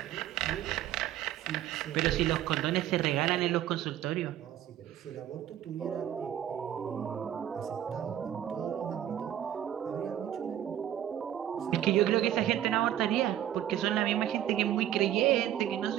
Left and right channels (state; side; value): quieter; left; 11.5 dB